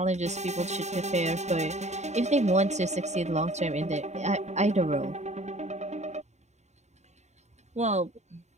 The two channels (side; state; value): left; late; 0.33 ms